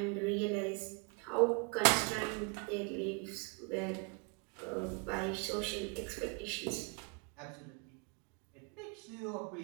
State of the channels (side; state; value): left; quieter; 34.3 dB